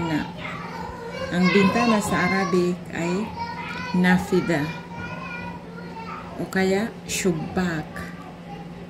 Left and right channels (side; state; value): both; identical; correlation 1.00